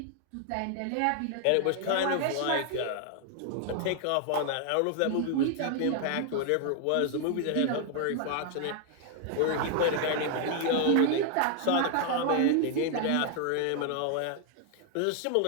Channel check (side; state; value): both; different; correlation 0.00